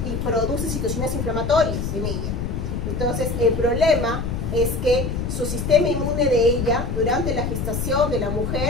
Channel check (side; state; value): left; noise; rumble, 2 dB below the sound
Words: produce situaciones inflamatorias en ella. Entonces, el problema es que su sistema inmune de ella, durante la gestación de la